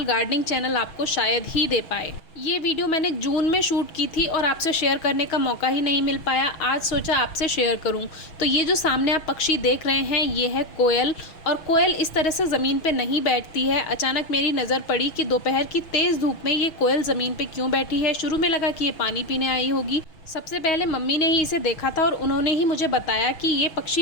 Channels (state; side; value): late; right; 6.3 ms